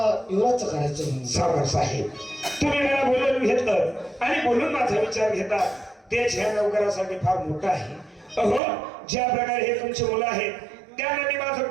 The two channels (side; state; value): left; drops out; at 8.6 s